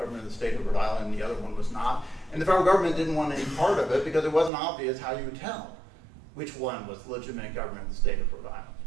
of the state of Rhode Island and the other one was not. And the federal government didn't want any part of it because it wasn't obvious how you would tell which one was the legitimate government of the state of Rhode Island.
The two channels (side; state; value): left; drops out; at 4.5 s